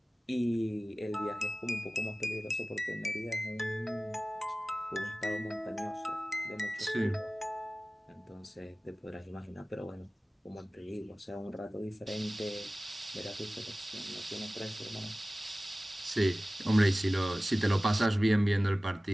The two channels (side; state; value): both; normal; correlation 0.97